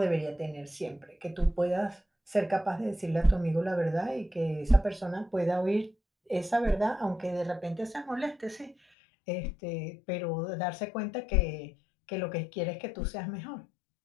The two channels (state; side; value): drops out; right; at 8.8 s